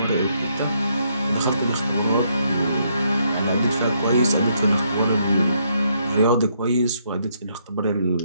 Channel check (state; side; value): inverted; both; correlation -0.73